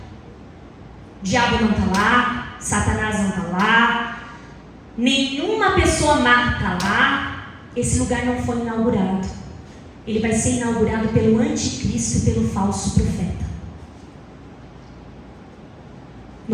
o diabo não está lá, Satanás não está lá, nenhuma pessoa má está lá. Esse lugar não foi inaugurado. Ele vai ser inaugurado pelo anticristo e pelo falso profeta.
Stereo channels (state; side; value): identical; both; correlation 1.00